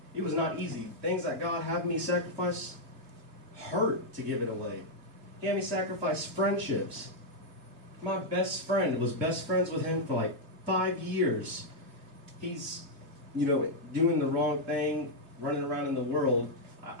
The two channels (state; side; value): late; left; 2.7 ms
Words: It was not easy. Things that God had me sacrifice hurt to give it away. He had me sacrifice friendships. My best friend was best friends with him for like 5 years. He's, doing the wrong thing, running around in the world.